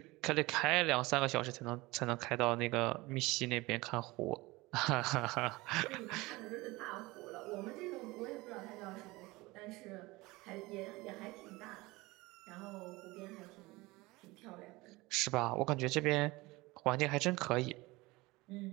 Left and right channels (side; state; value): left; quieter; 21.7 dB